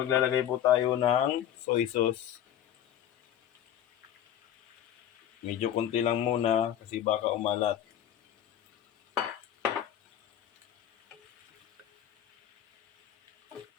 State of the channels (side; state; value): right; quieter; 10.7 dB